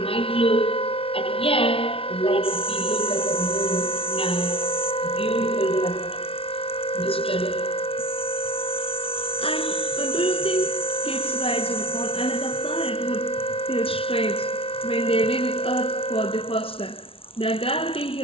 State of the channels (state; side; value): late; right; 0.26 ms